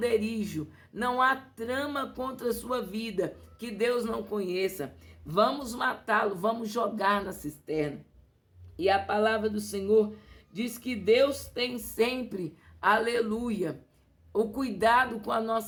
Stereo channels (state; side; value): identical; both; correlation 1.00